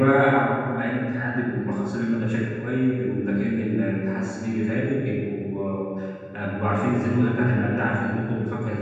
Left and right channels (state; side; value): identical; both; correlation 1.00